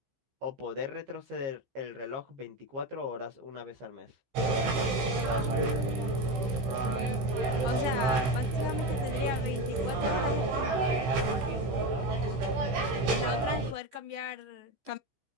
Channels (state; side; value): late; left; 16 ms